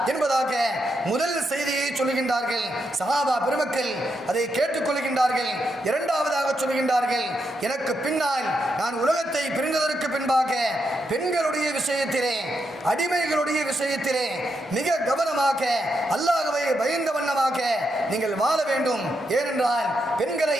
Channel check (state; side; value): normal; both; correlation 0.82